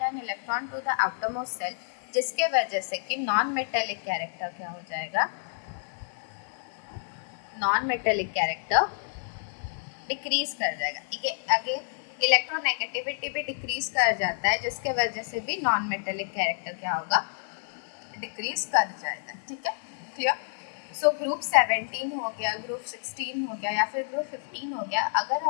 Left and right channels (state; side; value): silent; right; 59 dB below the other